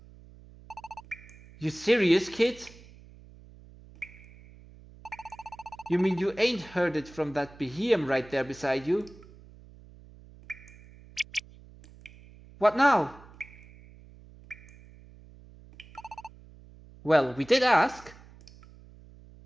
You serious, kid? You mean you ain't heard it from that behemoth right there beside you? What now? Well, we did ask.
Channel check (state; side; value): noise; right; hum, 22 dB below the sound